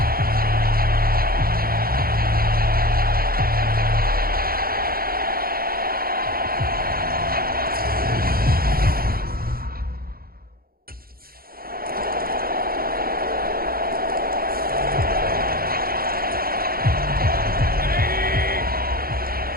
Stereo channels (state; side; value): late; left; 0.43 ms